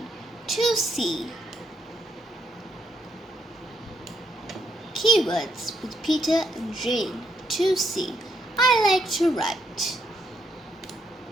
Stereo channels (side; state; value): both; normal; correlation 0.76